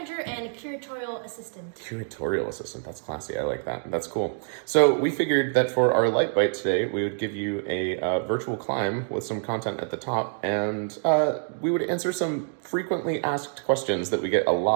and curatorial assistant. Curatorial assistant, that's classy, I like that, that's cool. So we figured that for our light bite today, we would give you a virtual climb with some content at the top, and we would answer some frequently asked questions that we get a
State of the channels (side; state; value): left; silent; digital silence